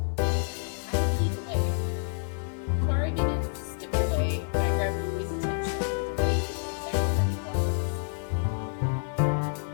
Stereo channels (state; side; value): silent; right; 59 dB below the other